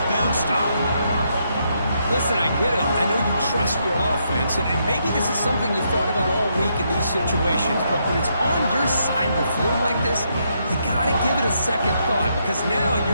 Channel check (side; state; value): both; inverted; correlation -0.77